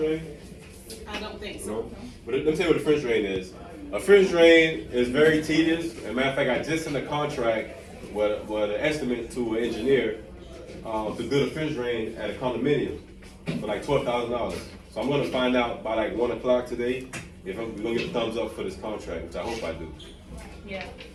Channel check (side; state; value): both; identical; correlation 1.00